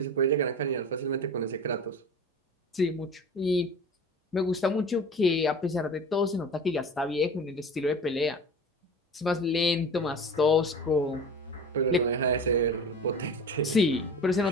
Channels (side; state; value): both; normal; correlation 0.37